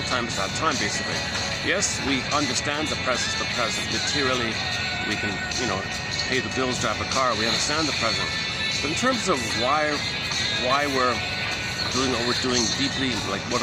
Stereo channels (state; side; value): identical; both; correlation 1.00